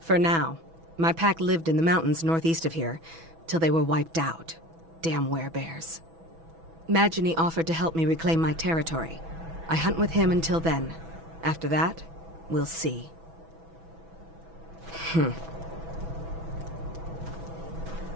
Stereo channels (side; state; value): left; late; 6.1 ms